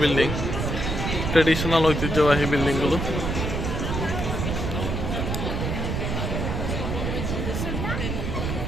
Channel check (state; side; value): noise; right; rumble, 2 dB below the sound